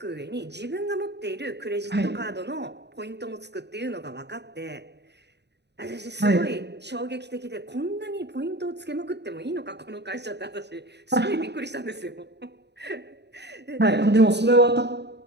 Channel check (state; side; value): late; left; 0.50 ms